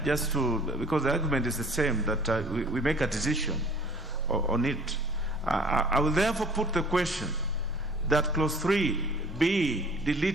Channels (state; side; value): normal; both; correlation 0.51